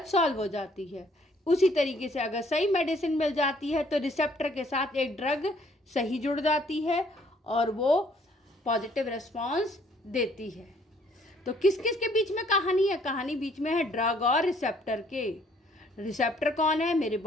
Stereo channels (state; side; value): normal; both; correlation 0.63